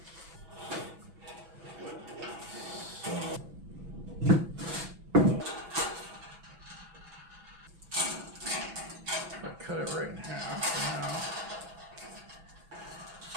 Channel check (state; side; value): late; left; 6.1 ms